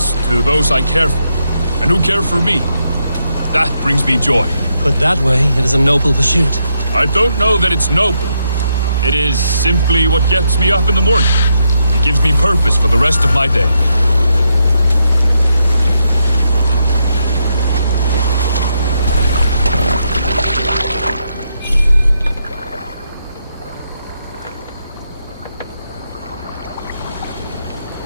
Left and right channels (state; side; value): inverted; both; correlation -0.81